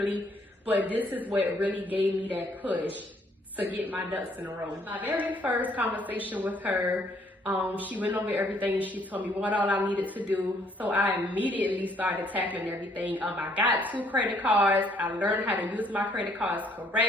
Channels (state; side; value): normal; both; correlation 0.65